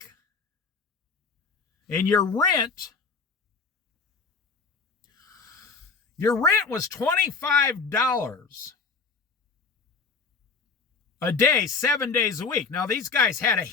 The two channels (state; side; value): quieter; right; 4.9 dB